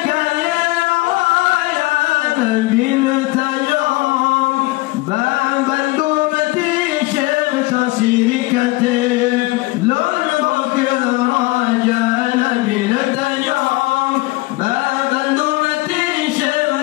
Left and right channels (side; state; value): right; quieter; 21.4 dB